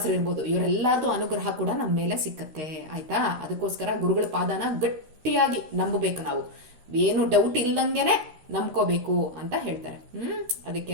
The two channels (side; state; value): left; late; 13 ms